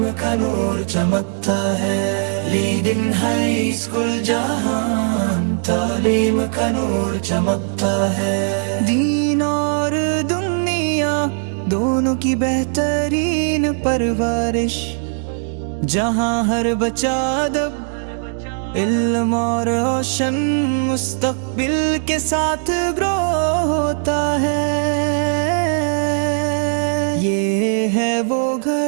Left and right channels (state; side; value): silent; left; 65 dB below the other